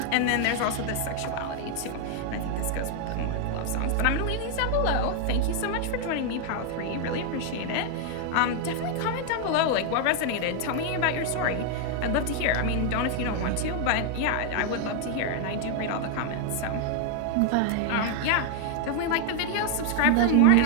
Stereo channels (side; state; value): both; different; correlation 0.00